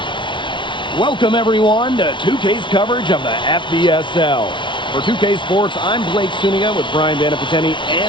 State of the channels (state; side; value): late; right; 0.24 ms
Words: Welcome, everyone, to 2K's coverage of the FBSL. For 2K Sports, I'm Blake Suniga with Brian Vanapateni